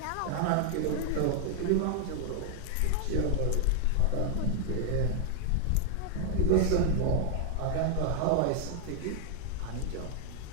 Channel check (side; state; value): both; different; correlation 0.00